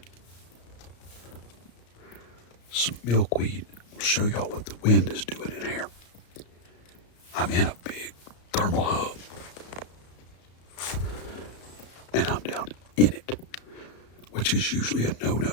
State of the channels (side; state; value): right; late; 34 ms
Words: some milkweed. I'll show y'all what the wind is doing in here. I'm in a big thermal hub. And I'm down in it, which is usually a